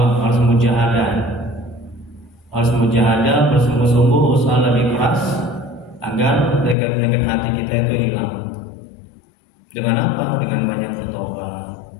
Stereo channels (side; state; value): right; drops out; at 6.8 s